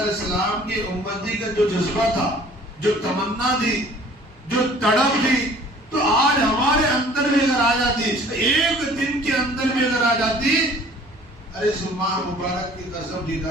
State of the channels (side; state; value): both; normal; correlation 0.51